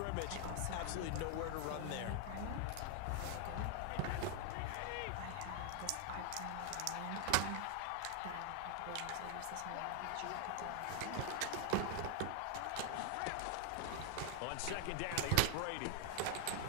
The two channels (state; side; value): different; both; correlation 0.00